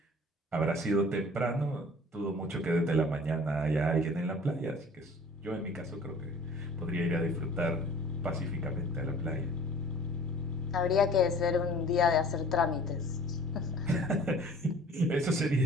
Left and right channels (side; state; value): both; normal; correlation 0.48